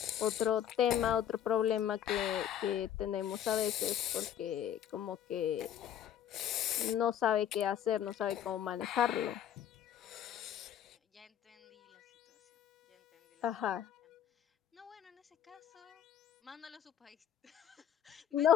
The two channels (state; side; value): quieter; right; 10.0 dB